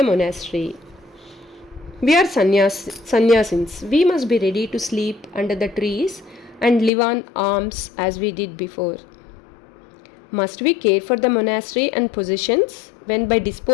monastery. We are sannyasins. We must be ready to sleep under the trees and live on alms as we did before. Must we care for the monastery and possessions when by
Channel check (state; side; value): drops out; right; at 6.9 s